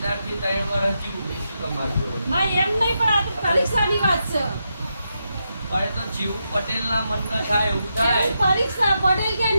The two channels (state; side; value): inverted; both; correlation -0.85